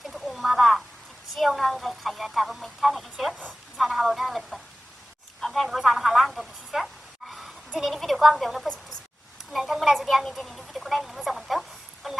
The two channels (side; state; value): both; normal; correlation 0.97